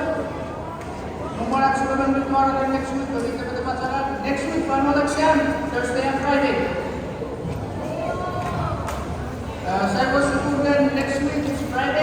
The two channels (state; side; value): identical; both; correlation 1.00